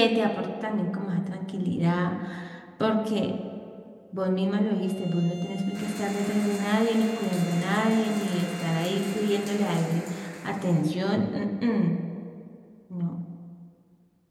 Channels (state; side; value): identical; both; correlation 1.00